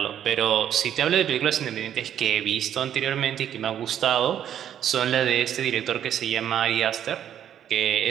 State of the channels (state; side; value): quieter; left; 10.0 dB